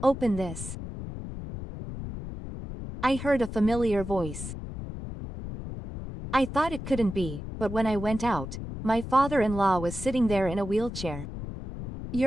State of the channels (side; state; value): left; noise; rumble, 9 dB below the sound